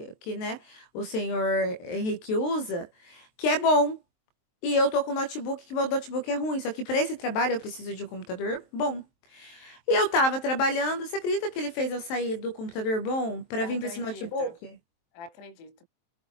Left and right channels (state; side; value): late; right; 23 ms